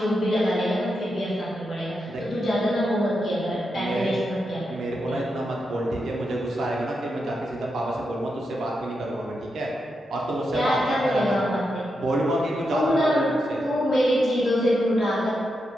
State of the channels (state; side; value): normal; both; correlation 0.85